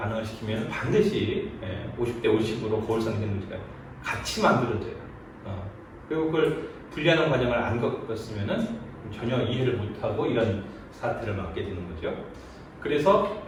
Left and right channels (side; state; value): both; identical; correlation 1.00